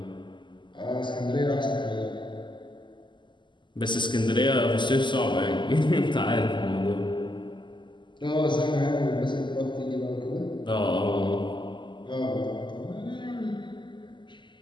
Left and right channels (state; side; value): late; right; 0.22 ms